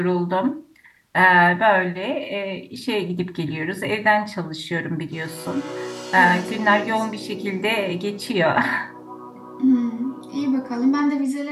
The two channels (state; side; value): identical; both; correlation 1.00